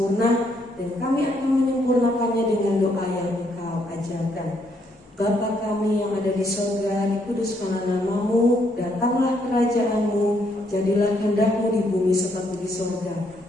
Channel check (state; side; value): normal; both; correlation 0.73